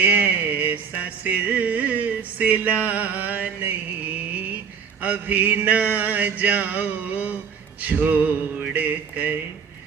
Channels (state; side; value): quieter; left; 6.5 dB